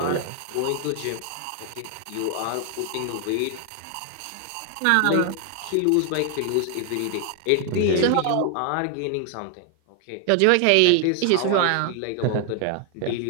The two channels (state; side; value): different; both; correlation 0.00